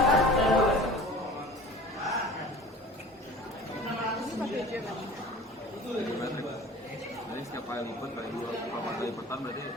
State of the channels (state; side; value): normal; both; correlation 0.42